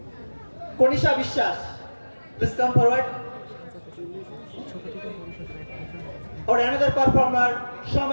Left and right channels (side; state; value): both; inverted; correlation -1.00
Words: Konisha Vishwas, please come forward. Or another performer,